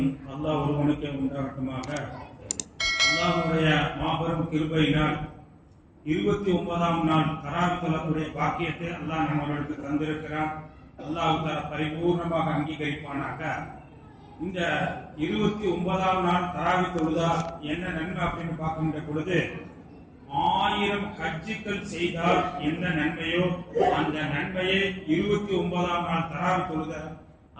அல்லாஹ் ஒருவனுக்கே உண்டாகட்டுமாக. அல்லாஹ்வுடைய மாபெரும் கிருபையினால் 29ஆம் நாள் தராவித் தொழக்கூடிய பாக்கியத்தை அல்லாஹ் நம்மளுக்கு தந்திருக்கிறான். அல்லாஹ் தஆலா பரிபூர்ணமாக அங்கீகரிப்பானாக. இந்த 29ஆம் நாள் தராவித் தொழுதா என்ன நன்மை அப்படின்னு பார்க்கின்ற பொழுது, 1000 ஹஜ்ஜுகள் செய்தால் என்ன நன்மையோ அந்த நன்மையை 29ஆம் நாள் தராவித் தொழுத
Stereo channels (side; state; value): both; identical; correlation 1.00